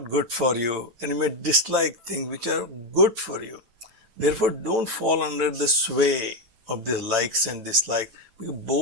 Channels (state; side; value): late; left; 9.0 ms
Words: good for you, and you may dislike things which are good for you. Therefore, don't fall under the sway of these likes and dislikes, because